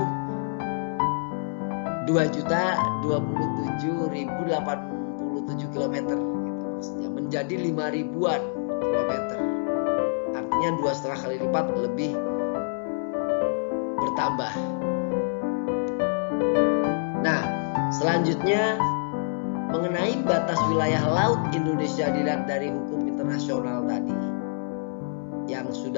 2.027.087 km gitu maksudnya, menjadi 5.000-an kilometer. Artinya 2,5 kali lipat lebih bertambah. Nah, selanjutnya mengenai batas wilayah laut Indonesia dilihat dari hukum internasional tadi yang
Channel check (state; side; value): silent; right; 61 dB below the other